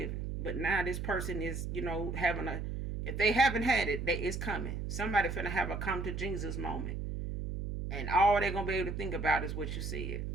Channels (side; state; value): right; noise; hum, 4 dB below the sound